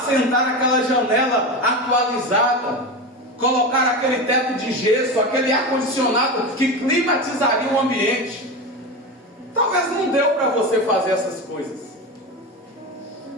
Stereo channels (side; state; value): both; normal; correlation 0.22